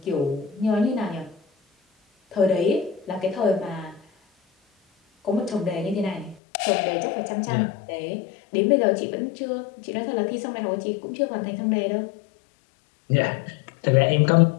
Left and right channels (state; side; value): drops out; right; at 6.4 s